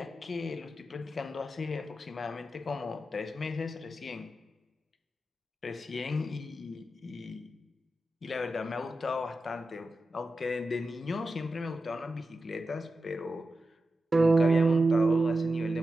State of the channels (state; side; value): normal; both; correlation 0.91